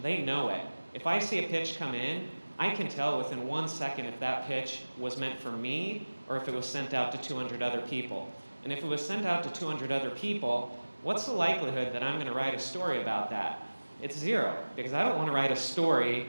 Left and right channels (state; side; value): inverted; both; correlation -1.00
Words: they know it. If I see a pitch come in, I can tell within 1 second if that pitch was meant for me or if it was sent out to 200 other people. And if it was sent out to 200 other people, what's the likelihood that I'm going to write a story about that? It's 0, because I don't want to write a story